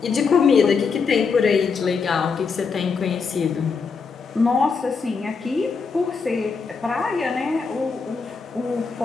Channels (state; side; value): quieter; right; 5.2 dB